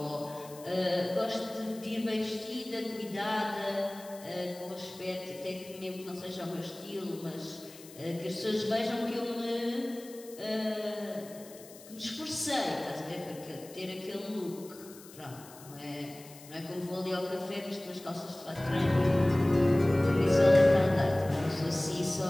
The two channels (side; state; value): left; noise; hiss, 19 dB below the sound